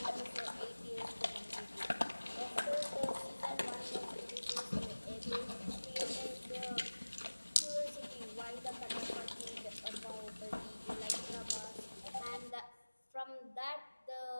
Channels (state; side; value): inverted; both; correlation -1.00